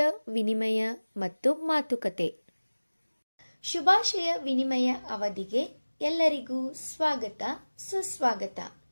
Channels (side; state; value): both; inverted; correlation -1.00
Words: ವಿನಿಮಯ ಮತ್ತು ಮಾತುಕತೆ. ಶುಭಾಶಯ ವಿನಿಮಯ ಅವಧಿಗೆ ಎಲ್ಲರಿಗೂ ಸ್ವಾಗತ ಸುಸ್ವಾಗತ.